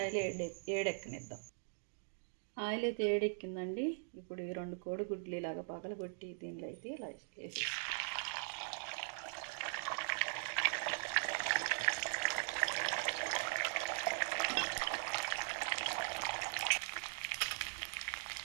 ఏడెక్కనిద్దాం. ఆయిల్ అయితే ఏడెక్కిందండి. ఇప్పుడు ఈ 2 కోడిగుడ్లు ఇలాగ పగలగొట్టి దీనిలో అయితే ఇలా వేసి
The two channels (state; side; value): silent; left; digital silence